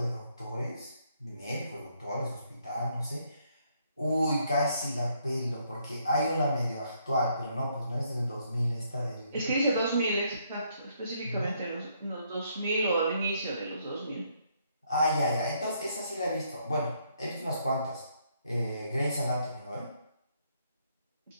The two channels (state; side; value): inverted; both; correlation -0.71